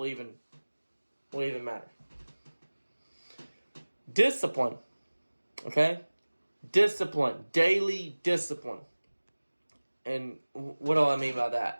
even matter. Discipline, okay? Discipline, daily discipline. And what do I mean by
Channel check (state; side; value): inverted; both; correlation -1.00